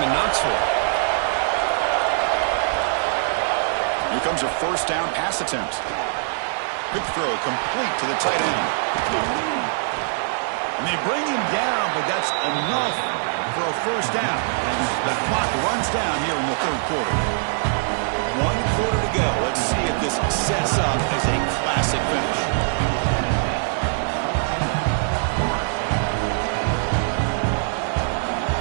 in Knoxville. Here comes a first down pass attempt. Quick throw complete to the tight end. And they bring him down, but that's enough for a first down. And the clock runs down here in the third quarter. 1 quarter to go. Let's see if this sets up as a classic finish.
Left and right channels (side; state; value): left; silent; digital silence